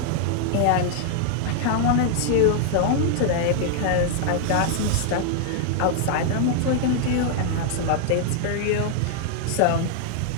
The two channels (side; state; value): both; different; correlation -0.01